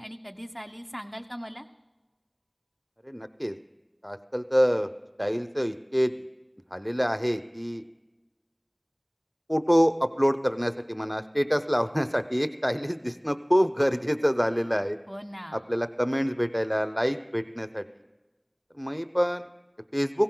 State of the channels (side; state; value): both; identical; correlation 1.00